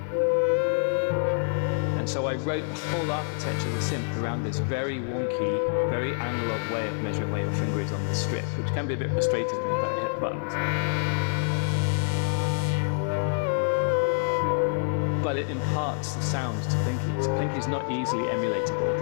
And so I wrote the whole architecture of the synth around this very wonky, very analog way of measuring where your finger is on the strip, which can be a bit frustrating when you don't hit the buttons. But it imparts the sounds to Plinky. So Plinky is not easily emulatable.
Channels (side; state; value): right; silent; 60 dB below the other